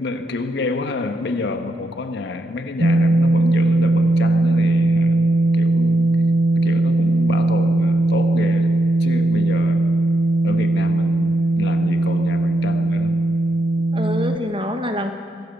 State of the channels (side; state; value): both; normal; correlation 0.82